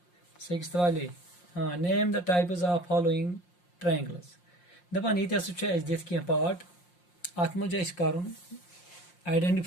6th वाले। हाँ, name the types of following triangles. दपान ये दित कह पार्ट अत मज कर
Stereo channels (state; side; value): late; right; 5.7 ms